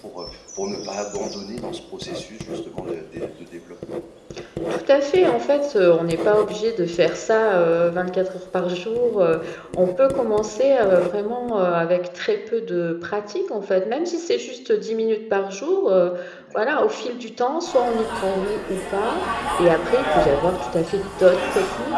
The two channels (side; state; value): both; identical; correlation 1.00